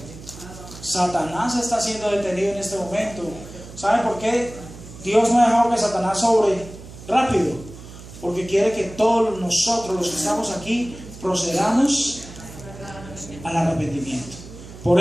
Satanás está siendo detenido en este momento. ¿Saben por qué Dios no ha dejado que Satanás sobre rápido? Porque quiere que todos nosotros, los que estamos aquí, procedamos al arrepentimiento. Por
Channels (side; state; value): right; noise; hum, 16 dB below the sound